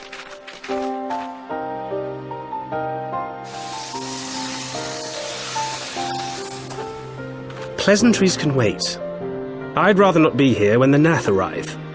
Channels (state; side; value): identical; both; correlation 1.00